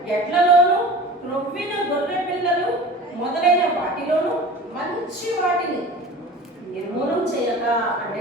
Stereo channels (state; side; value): normal; both; correlation 0.38